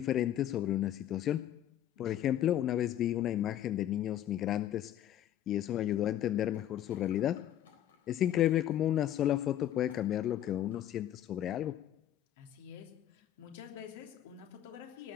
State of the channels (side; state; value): right; quieter; 11.8 dB